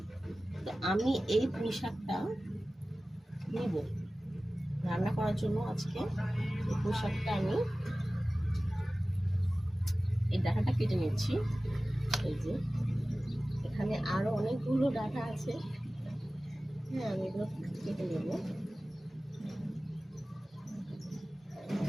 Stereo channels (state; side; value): normal; both; correlation 0.96